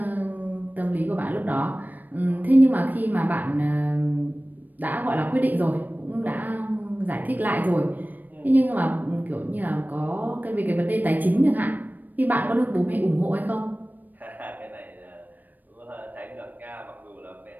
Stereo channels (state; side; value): late; left; 0.087 ms